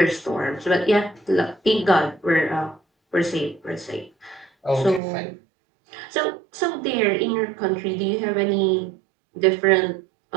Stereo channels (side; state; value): left; drops out; at 5.0 s